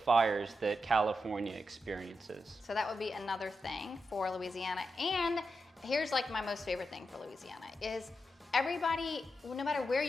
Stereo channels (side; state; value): both; normal; correlation 0.87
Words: that California experiences. So that would be another thing for Louisiana. And here's like my most favorite thing for Louisiana is everybody, no matter where